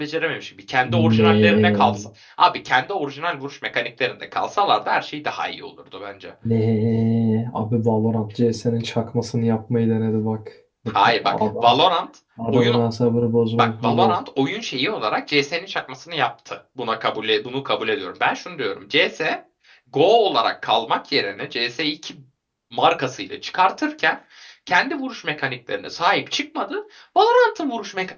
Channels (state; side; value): identical; both; correlation 1.00